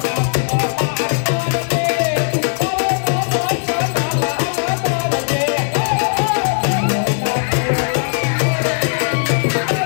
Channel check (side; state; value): right; silent; digital silence